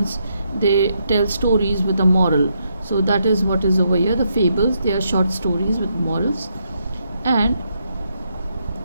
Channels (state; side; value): inverted; both; correlation -0.78